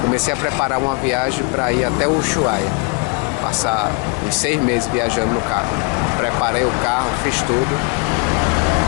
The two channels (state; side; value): quieter; right; 30.3 dB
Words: Comecei a preparar uma viagem para ir até o Ushuaia. Passar uns 6 meses viajando no carro. Preparei o carro, fiz tudo.